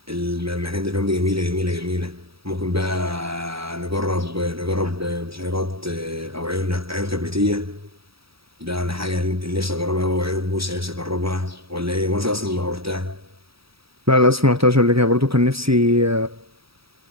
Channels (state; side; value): late; left; 0.76 ms